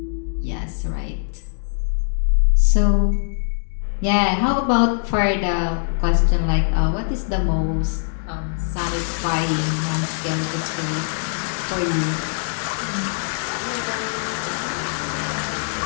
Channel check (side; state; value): right; silent; digital silence